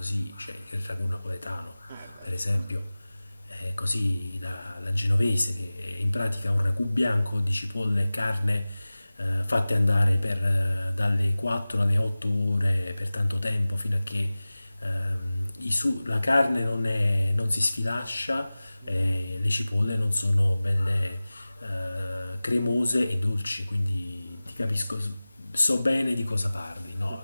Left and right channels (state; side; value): inverted; both; correlation -0.98